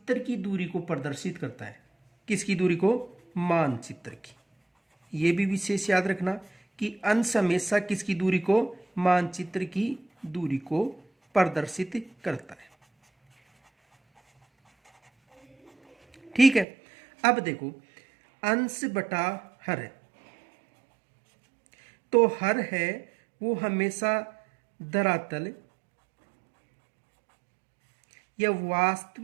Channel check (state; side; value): drops out; left; at 16.7 s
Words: की दूरी को प्रदर्शित करता है। किसकी दूरी को, मानचित्र की। ये भी विशेष याद रखना कि अंश हमेशा किसकी दूरी को, मानचित्र की दूरी को प्रदर्शित करता है। ठीक है। अब देखो, अंश बटा हर, तो हर है वो हमेशा धरातल या